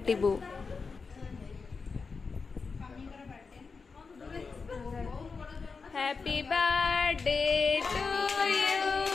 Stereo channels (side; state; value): right; quieter; 4.8 dB